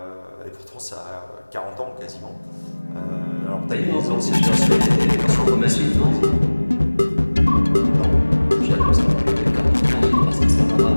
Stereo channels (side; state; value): both; inverted; correlation -1.00